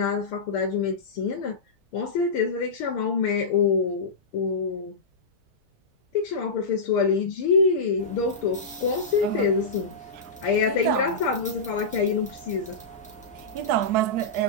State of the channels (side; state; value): right; quieter; 3.1 dB